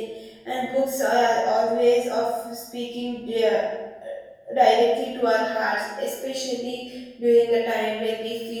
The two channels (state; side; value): identical; both; correlation 1.00